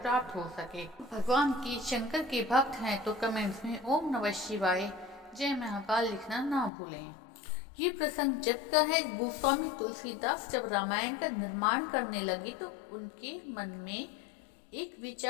प्राप्त हो सके। भगवान की शंकर के भक्त हैं तो कमेंट्स में ओम नमः शिवाय जय महाकाल लिखना ना भूलें। ये प्रसंग जब का है, गोस्वामी तुलसीदास जब रामायण का निर्माण करने लगे तो उनके मन में एक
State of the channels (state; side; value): drops out; right; at 6.7 s